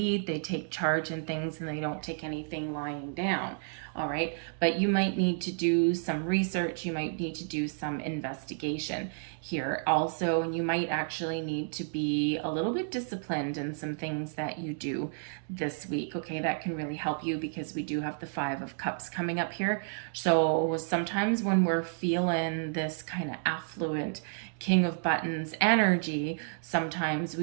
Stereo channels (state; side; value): silent; left; digital silence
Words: they take charge in things, and they don't take anything lying down. All right, but you might need to do some research, you might need to do some investigation here also, and you might actually need to be a little bit disciplined in some things that you do this week. Okay, that can really help you because we do have the 5 of Cups coming up here. So sometimes when we're feeling this kind of affluent King of Buttons energy, sometimes